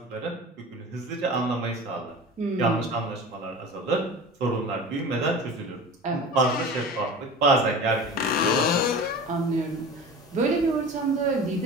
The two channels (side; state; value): both; normal; correlation 0.35